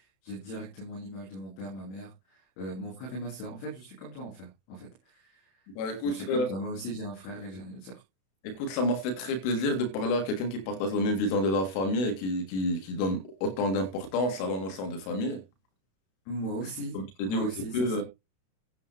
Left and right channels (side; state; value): right; late; 32 ms